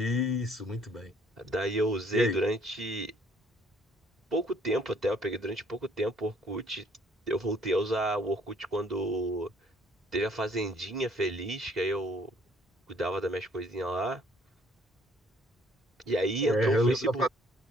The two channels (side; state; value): both; normal; correlation 0.61